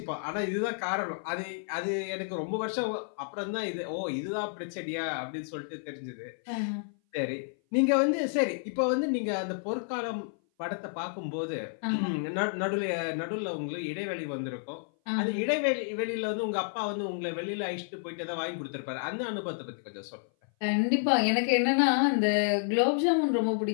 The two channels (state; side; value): silent; right; 56 dB below the other